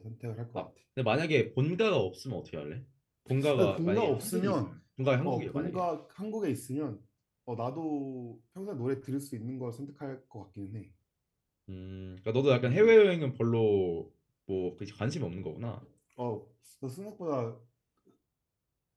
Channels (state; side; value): identical; both; correlation 1.00